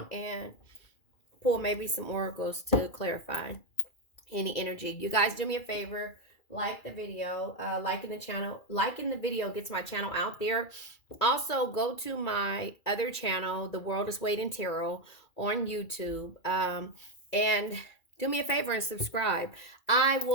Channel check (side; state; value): right; late; 2.4 ms